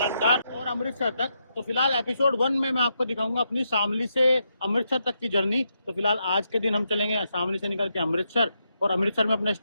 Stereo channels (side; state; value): both; inverted; correlation -0.82